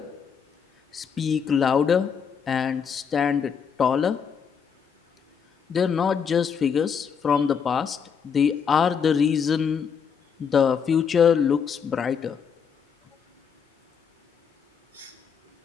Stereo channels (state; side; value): quieter; right; 6.9 dB